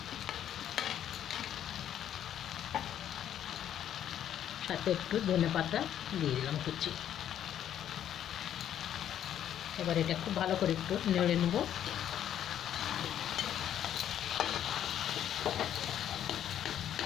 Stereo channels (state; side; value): quieter; right; 10.4 dB